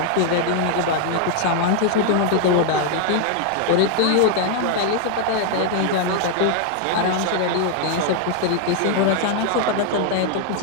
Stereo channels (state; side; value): different; both; correlation 0.00